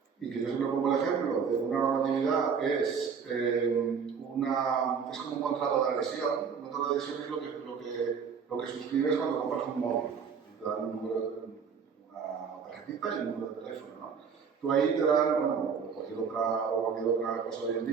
y que yo siempre pongo el ejemplo de una normatividad es como un contrato de adhesión. Un contrato de adhesión es lo que suscribes cuando compras un móvil. Te dan una tarjetita y un número de teléfono, ¿no? Tú ahí te dan, bueno, cualquier otra cosa hoy en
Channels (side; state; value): left; quieter; 6.3 dB